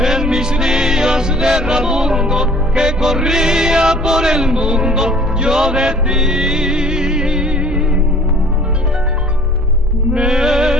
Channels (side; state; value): both; normal; correlation 0.51